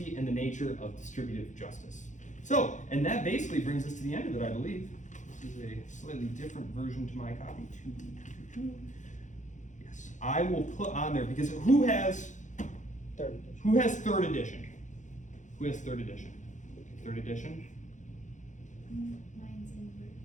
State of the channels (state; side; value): late; right; 0.36 ms